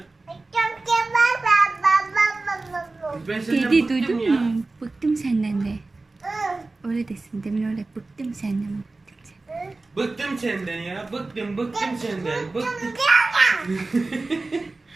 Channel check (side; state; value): left; quieter; 3.4 dB